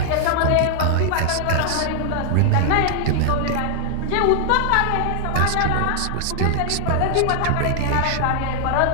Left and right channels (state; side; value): different; both; correlation -0.01